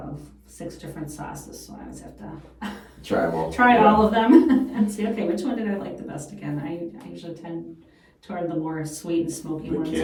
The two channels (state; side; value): identical; both; correlation 1.00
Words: 6 different sauces. So I always have to try them all. Try all of them and see, okay, which one did I like the best again. I usually tend toward the more sweet and smoky ones